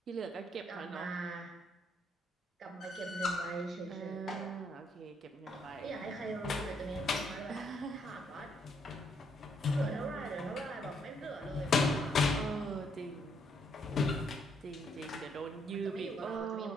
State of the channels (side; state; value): both; normal; correlation 0.71